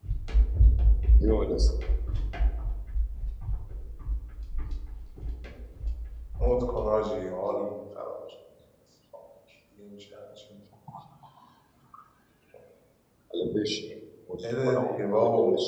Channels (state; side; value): identical; both; correlation 1.00